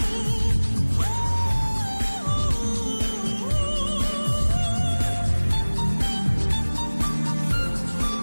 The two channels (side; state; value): both; inverted; correlation -1.00